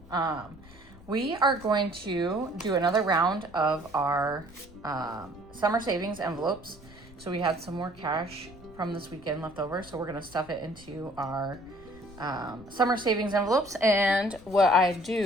We are going to do another round of our summer savings envelopes. So we had some more cash from this weekend left over, so we're gonna stuff it into our summer savings envelopes. And what I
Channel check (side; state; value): left; noise; rumble, 22 dB below the sound